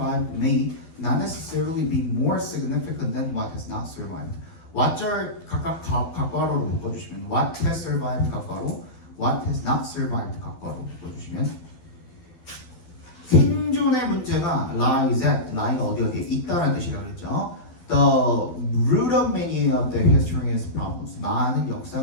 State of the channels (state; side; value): late; right; 12 ms